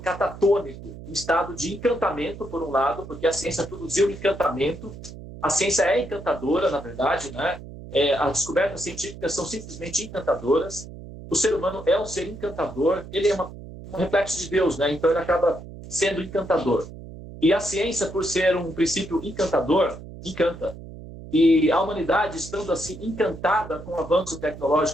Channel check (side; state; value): right; noise; hum, 14 dB below the sound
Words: em estado de encantamento, por um lado, porque a ciência produziu encantamento. A ciência é encantadora, na verdade, né? As descobertas científicas são simplesmente encantadoras. O ser humano é um ser encantador, ele é um reflexo de Deus, né? Então ele acaba sendo encantador. E a ciência, por ser um princípio encantador, encanta. E a humanidade, estando assim encantada com o avanço